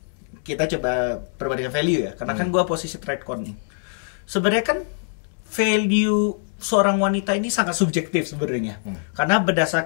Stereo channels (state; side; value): silent; right; digital silence